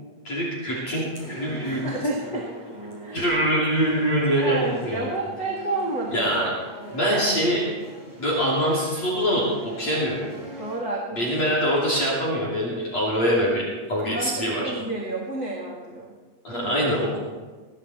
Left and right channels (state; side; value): late; right; 8.4 ms